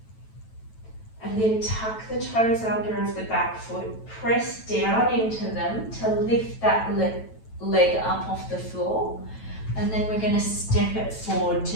And then tuck the toes under of the back foot, press down into them to lift that leg up off the floor. And then we're going to step it forward to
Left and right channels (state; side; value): late; right; 9.1 ms